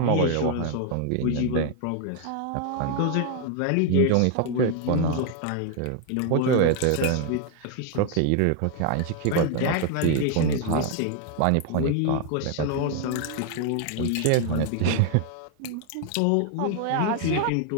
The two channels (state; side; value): different; both; correlation 0.00